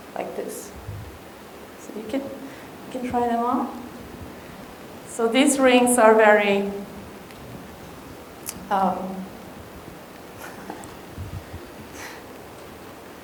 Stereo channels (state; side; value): identical; both; correlation 1.00